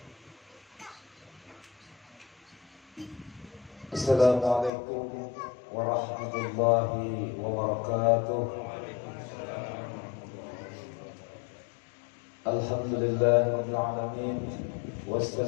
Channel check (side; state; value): right; drops out; at 4.7 s